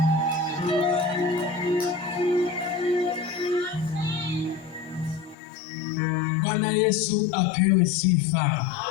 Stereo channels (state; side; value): drops out; right; at 5.4 s